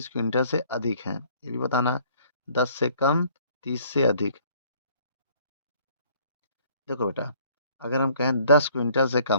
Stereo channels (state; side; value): inverted; both; correlation -0.59